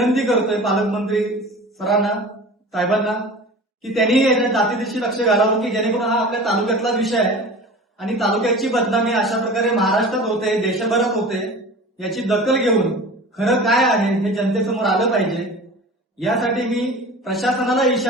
करतोय पालकमंत्री सरांना साहेबांना की त्यांनी याच्या जातीदिशी लक्ष घालावं की जेणेकरून हा आपल्या तालुक्यातला विषय आहे आणि तालुक्याची बदनामी अशा प्रकारे महाराष्ट्रात होते, देशभरात होते, याची दखल घेऊन खरं काय आहे हे जनतेसमोर आलं पाहिजे. यासाठी मी प्रशासनाला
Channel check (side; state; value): both; normal; correlation 0.38